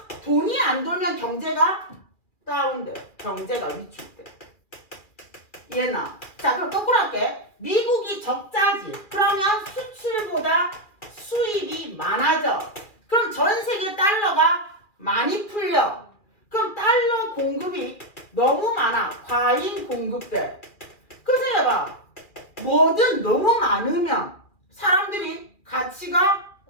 돈이 안 돌면 경제가 다운돼. 경제가 위축돼. 이해나? 자, 그럼 거꾸로 할게. 미국이 적자지. 그러면 수출보다 수입이 많아져. 그럼 전 세계 달러가 많이 풀려. 그럼 달러 공급이 너무 많아. 과잉 공급돼. 그럼 생각해봐. 뭐든 너무 많으면 사람들이 가치가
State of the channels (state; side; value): late; right; 2.4 ms